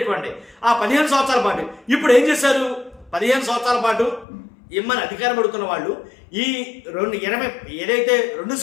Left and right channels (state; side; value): drops out; right; at 4.2 s